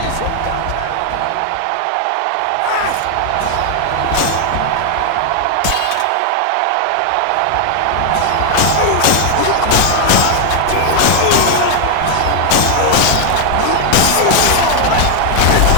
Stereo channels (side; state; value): both; different; correlation 0.00